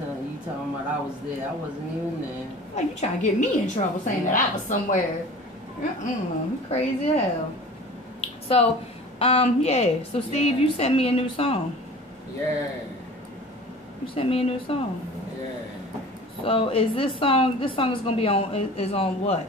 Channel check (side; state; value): both; normal; correlation 0.42